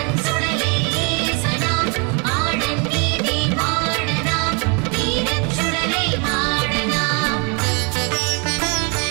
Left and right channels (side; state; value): left; quieter; 34.3 dB